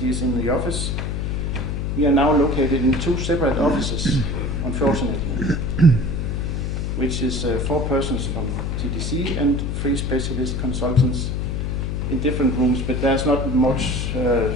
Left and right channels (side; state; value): left; noise; hum, 1 dB below the sound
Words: in the office, we are now located in 2 separate offices, unfortunately, which is 4 persons from TDC and 3 specialist consultants in different rooms, but there's not much